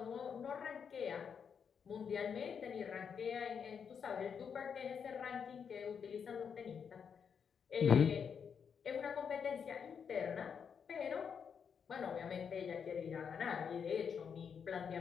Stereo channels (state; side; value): quieter; right; 6.9 dB